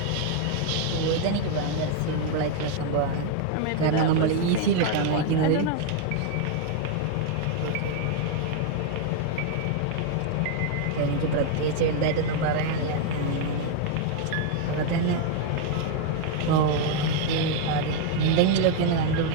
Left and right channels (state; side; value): different; both; correlation 0.00